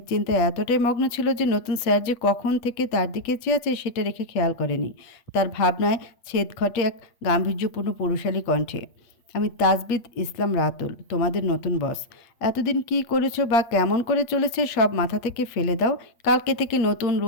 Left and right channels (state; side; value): late; right; 8.4 ms